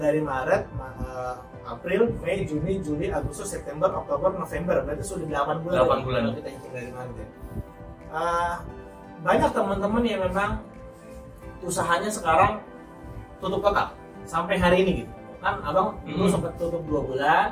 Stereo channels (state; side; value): identical; both; correlation 1.00